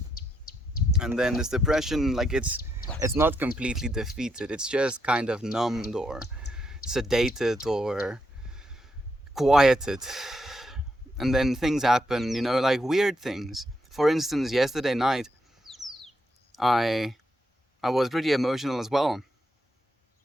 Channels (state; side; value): normal; both; correlation 0.79